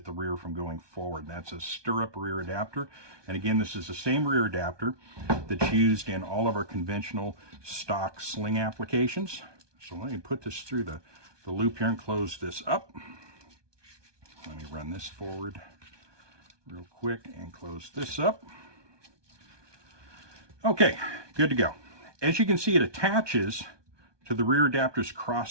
the rear from going forward. That's a Stirrup rear adapter. And again, this is the same rear adapter that's used in all of our conventional stock sling applications. So let me put this through the loop here and close this up. Let me run this forward real quick and close this up. Okay, good to go. As you can see, it attaches to the rear adapter's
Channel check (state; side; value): late; left; 1.2 ms